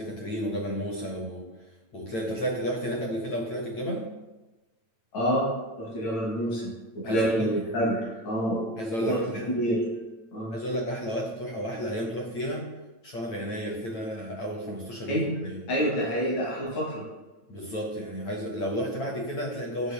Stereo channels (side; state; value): right; late; 9.0 ms